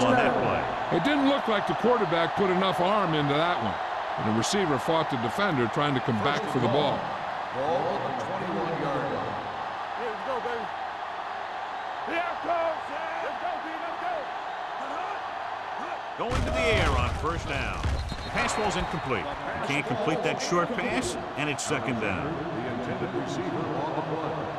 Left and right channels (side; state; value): both; identical; correlation 1.00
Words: on that play. It didn't look like the quarterback put enough arm into that one. And the receiver fought the defender trying to come back for the ball. Ball on the 21-yard line. Here we go, baby. Here it comes. Let's go, B. Let's go. Going to the air on first down. The pass ball's incomplete. He can't complete that short pass, and it's second down. The intended receiver on the play.